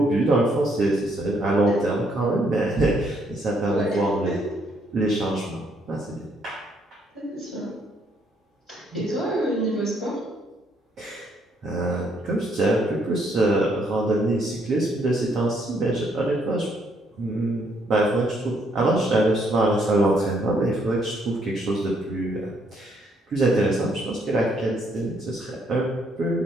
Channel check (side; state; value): both; normal; correlation 0.71